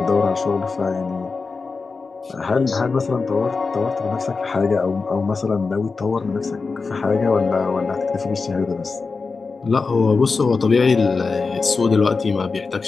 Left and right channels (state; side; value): quieter; right; 4.4 dB